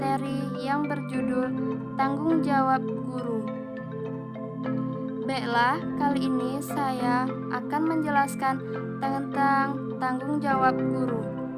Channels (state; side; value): identical; both; correlation 1.00